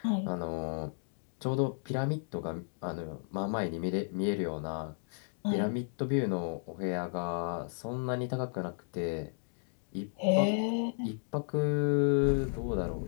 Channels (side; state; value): right; silent; digital silence